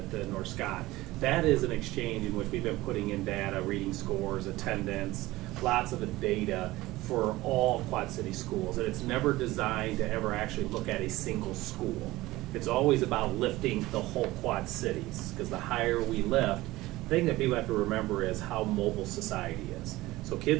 North Scott. That is an exchange in which we've been putting in data, reading scores, attendance, lots of the data for all Quad City schools. And it's never designed to ever actually look at a single school. It's always about lifting the whole Quad Cities, because the higher we lift, the thing that people have to remember is how mobile society is. So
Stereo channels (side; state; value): left; quieter; 18.5 dB